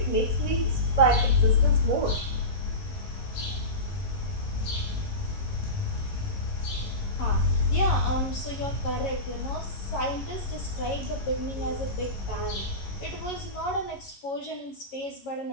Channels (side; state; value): right; late; 11 ms